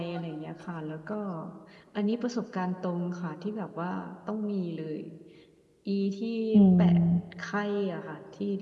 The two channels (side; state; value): both; identical; correlation 1.00